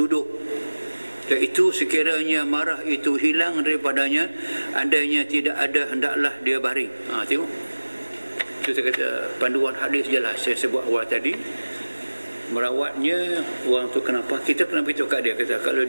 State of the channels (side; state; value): both; inverted; correlation -1.00